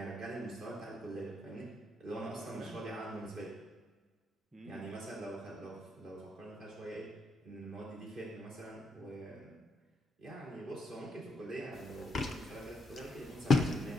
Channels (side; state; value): both; normal; correlation 0.76